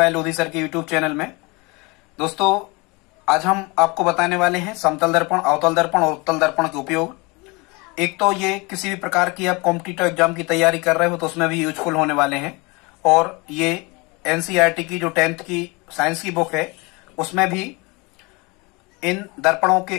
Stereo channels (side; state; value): right; quieter; 26.7 dB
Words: Lodhi sir के यूट्यूब चैनल में। दोस्तों, आज हम आपको बताने वाले हैं समतल दर्पण, अवतल दर्पण और उत्तल दर्पण के उपयोग। एक तो ये किसी भी प्रकार की आप कॉम्पिटिटिव एग्जाम की तैयारी कर रहे हो तो उसमें भी यूजफुल होने वाले हैं, और ये एनसीईआरटी की जो 10th की साइंस की बुक है उसमें भी इन दर्पणों